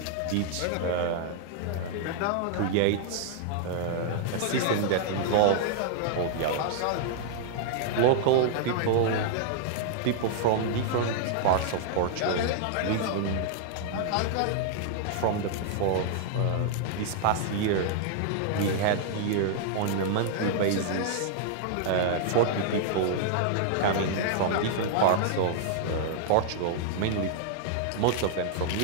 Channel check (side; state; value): both; different; correlation -0.01